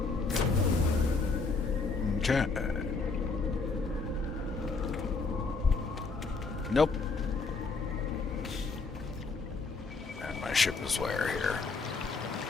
Okay. Nope. And my ship is where here?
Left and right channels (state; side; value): quieter; right; 4.1 dB